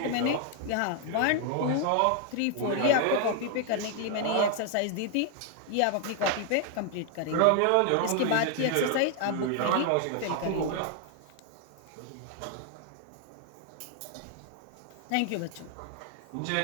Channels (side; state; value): both; different; correlation 0.00